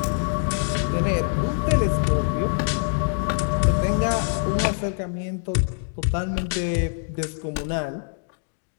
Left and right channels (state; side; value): silent; right; 62 dB below the other